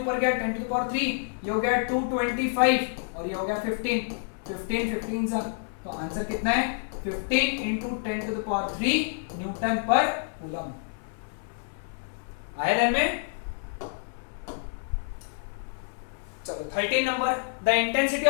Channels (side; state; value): right; silent; 59 dB below the other